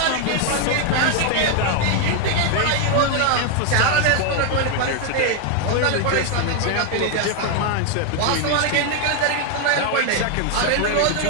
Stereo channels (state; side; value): different; both; correlation 0.01